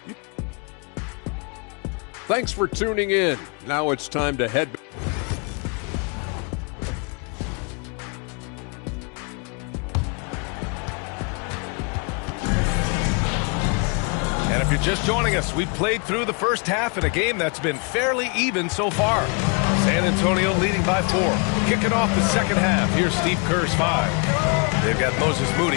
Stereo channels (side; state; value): right; quieter; 34.9 dB